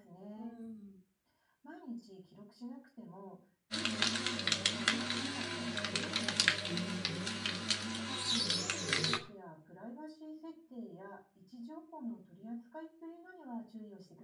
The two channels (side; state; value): both; identical; correlation 1.00